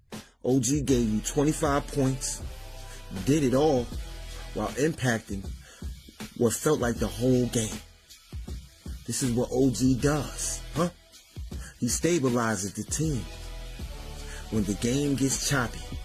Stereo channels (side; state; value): both; identical; correlation 1.00